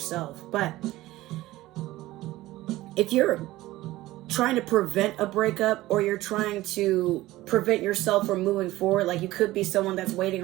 But if you're trying to prevent a breakup, or you're trying to prevent yourself from moving forward, like you could be someone that's waiting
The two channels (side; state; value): left; quieter; 17.2 dB